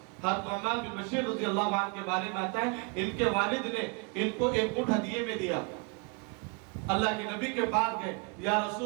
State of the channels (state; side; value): quieter; left; 32.9 dB